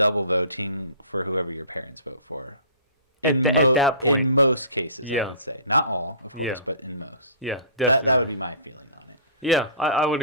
voting for whoever your parents vote for. In At that point. most cases, I Yeah. would say. Not all, of course, Yeah. but in most. Yeah, That would be my feeling on it. yeah. I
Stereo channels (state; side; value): inverted; both; correlation -0.44